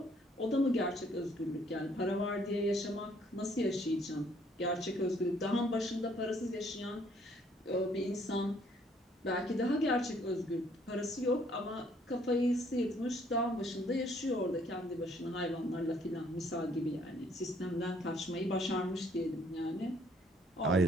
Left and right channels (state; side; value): normal; both; correlation 0.64